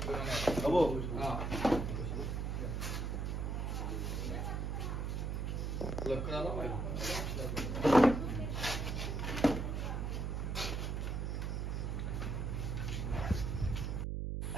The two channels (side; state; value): right; noise; hum, 1 dB below the sound